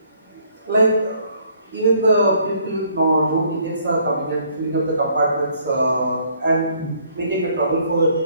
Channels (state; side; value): inverted; both; correlation -0.64